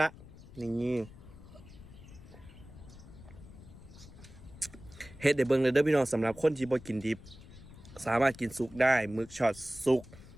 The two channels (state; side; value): noise; left; rumble, 18 dB below the sound